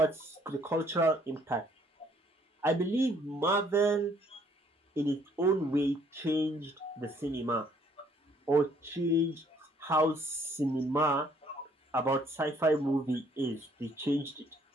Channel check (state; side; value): normal; both; correlation 0.63